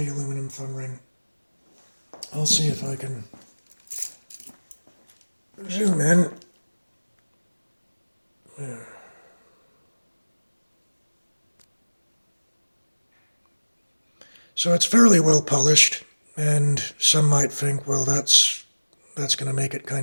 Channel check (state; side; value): inverted; both; correlation -1.00